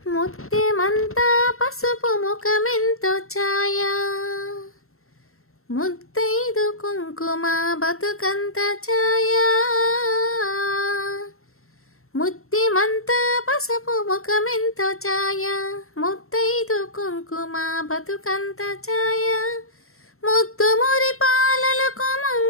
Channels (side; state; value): right; late; 0.62 ms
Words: ముత్యమంతా పసుపు ముఖమెంతో ఛాయ, ముత్తైదు కుంకుమ బతుకంత ఛాయ. ముత్యమంతా పసుపు ముఖమెంతో ఛాయ, ముత్తైదు కుంకుమ బతుకంత ఛాయ. ముద్దు మురి పాలలకు